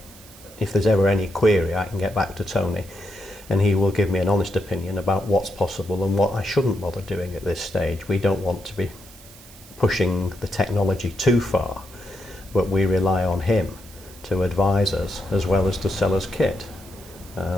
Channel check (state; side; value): noise; right; hiss, 21 dB below the sound